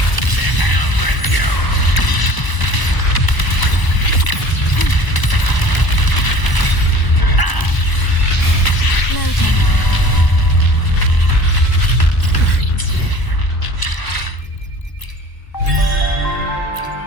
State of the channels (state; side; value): late; right; 1.0 ms